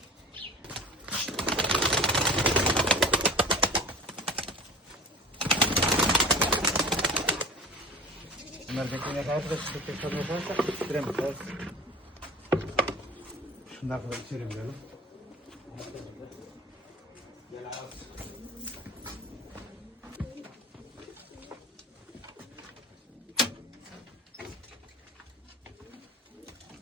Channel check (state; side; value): normal; both; correlation 0.36